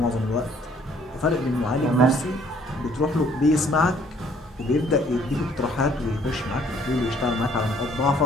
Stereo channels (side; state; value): both; normal; correlation 0.61